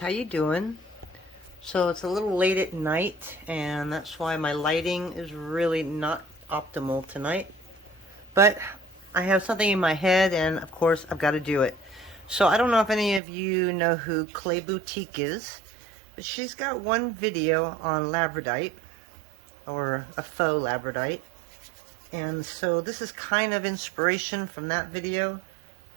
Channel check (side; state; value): left; drops out; at 13.2 s